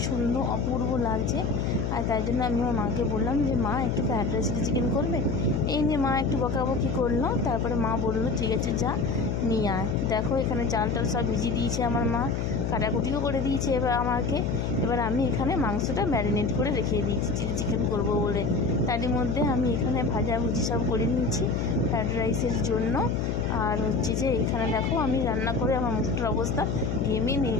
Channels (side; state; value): left; noise; hum, 1 dB below the sound